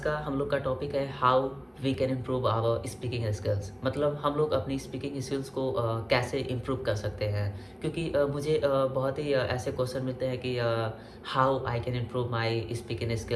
हम लोग का टॉपिक है how we can improve our speaking skills. मतलब हम लोग अपनी स्पीकिंग स्किल्स को कैसे इम्प्रूव कर सकते हैं। क्योंकि मुझे बहुत ही ऐसे क्वेश्चन मिलते हैं कि how I can improve my speaking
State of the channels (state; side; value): identical; both; correlation 1.00